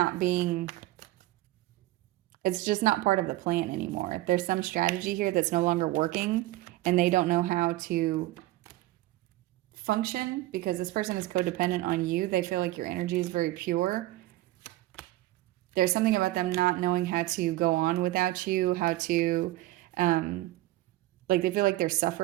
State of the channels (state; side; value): quieter; left; 17.2 dB